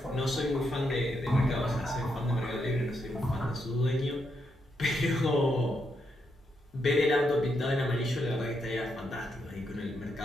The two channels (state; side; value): normal; both; correlation 0.80